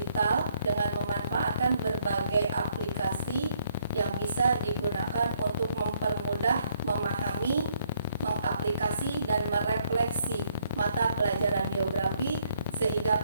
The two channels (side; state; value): both; inverted; correlation -0.68